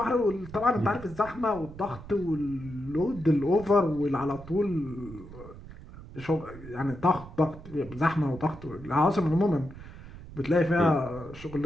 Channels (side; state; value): right; noise; rumble, 15 dB below the sound